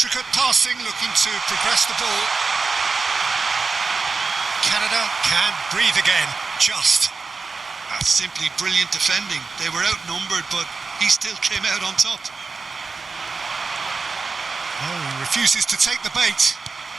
passing, looking to progress the ball. Canada can breathe again, just. That's simply brilliant defending. They were outnumbered, but he still came out on top. Oh, he refuses to take the bait.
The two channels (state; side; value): quieter; left; 4.4 dB